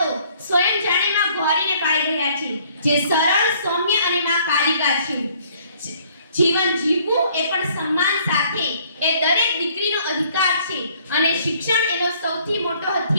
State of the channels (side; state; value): both; inverted; correlation -0.60